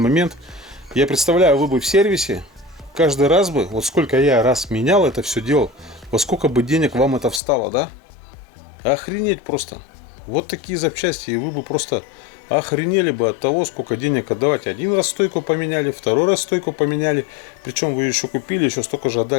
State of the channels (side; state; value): right; drops out; at 7.4 s